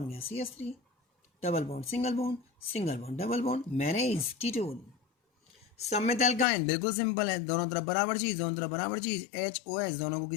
गया, CH3। Double bond single bond, single bond double bond, manage ketone. सममित एल्काइन बिल्कुल सिंपल है, दोनों तरफ बराबर चीज, दोनों तरफ बराबर चीज, HOH दोनों को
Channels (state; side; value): drops out; right; at 6.5 s